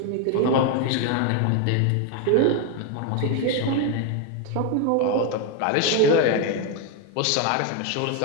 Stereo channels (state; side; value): different; both; correlation 0.01